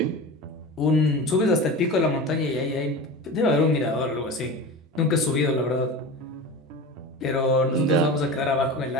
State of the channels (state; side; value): normal; both; correlation 0.30